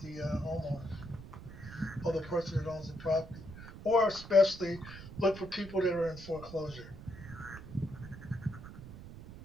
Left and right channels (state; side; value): noise; right; rumble, 13 dB below the sound